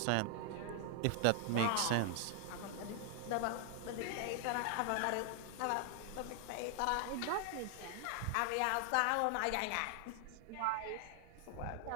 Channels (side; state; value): both; different; correlation 0.00